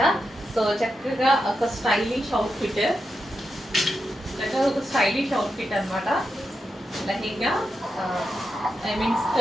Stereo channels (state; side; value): normal; both; correlation 0.87